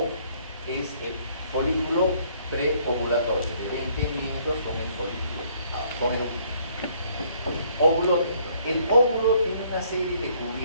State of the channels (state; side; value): inverted; both; correlation -0.64